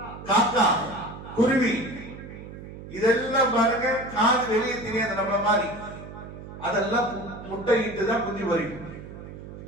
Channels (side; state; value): right; noise; hum, 13 dB below the sound